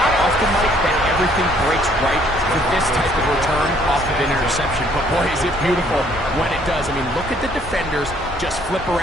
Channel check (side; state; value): both; normal; correlation 0.63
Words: often, Mike, that everything breaks right for this type of return off of an interception. But, boy, is it beautiful when it does. I mean, look at the defenders just flip